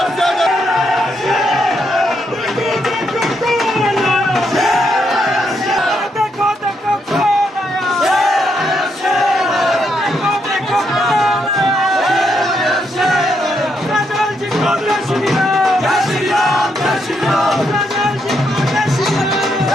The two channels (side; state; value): both; normal; correlation 0.78